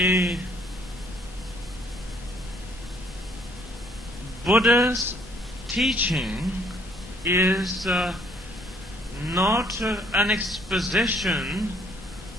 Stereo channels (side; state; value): both; normal; correlation 0.63